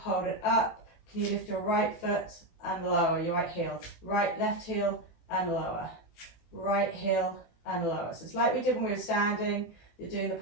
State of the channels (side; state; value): right; late; 18 ms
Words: it up. Can you lift your right foot and lower your right heel, left heel and lower, right heel and lower. So it's like we did when we were standing, you're doing the